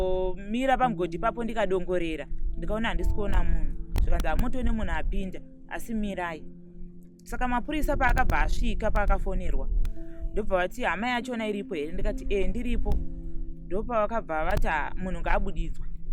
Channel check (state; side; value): identical; both; correlation 1.00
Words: pamugodhi papo ndikadongorera ndikaona handisi kuona munhu zvikanzi motone munhu apinda asi mirai. Saka mapurisa paakabva asvika paakafonerwa ndobva vati hama yachona iripo here? Ndikati ndiripo. Ndopavakabva vati munhu ngaabudidzwe.